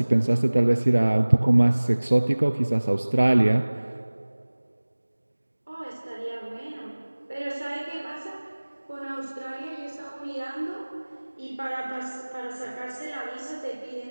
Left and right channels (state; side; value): inverted; both; correlation -1.00